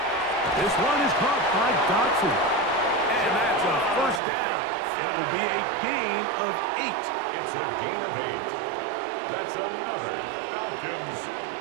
This one is caught by Dotson. And that's a first down. It will be a gain of 8. It's a gain of 8. That's another Falcons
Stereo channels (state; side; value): drops out; left; at 4.2 s